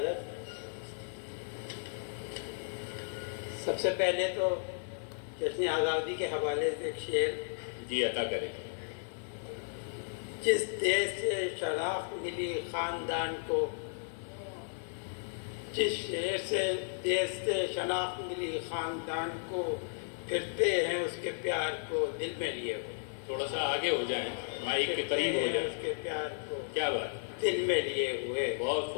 سب سے پہلے تو جشن آزادی کے حوالے سے ایک شعر جی عطا کریں. جس دیش سے شناخت ملی خاندان کو، جس شہر سے دیش سے شناخت ملی خاندان کو، پھرتے ہیں اس کے پیار کو دل میں لیے ہوئے. تھوڑا سا آگے ہو جائیں، مائک کے قریب ہو جائیں. اس کے پیار کو کیا بات، دل میں لیے ہوئے. بہت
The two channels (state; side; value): silent; right; 55 dB below the other